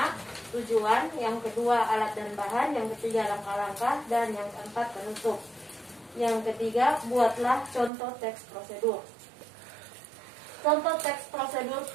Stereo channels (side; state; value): left; drops out; at 7.9 s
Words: tujuan. Yang kedua, alat dan bahan. Yang ketiga, langkah-langkah. Dan yang keempat, penutup. Yang ketiga, buatlah contoh teks prosedur. Contoh teks prosedur